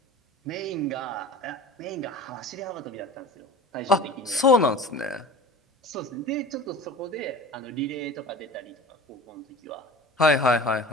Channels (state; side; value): normal; both; correlation 0.38